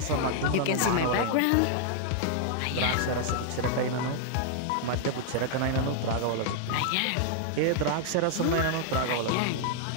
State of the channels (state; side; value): different; both; correlation -0.01